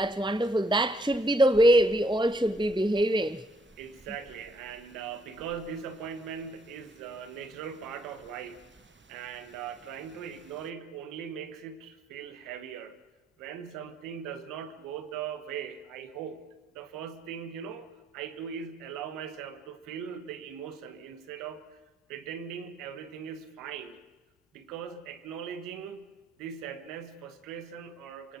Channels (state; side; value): normal; both; correlation 0.69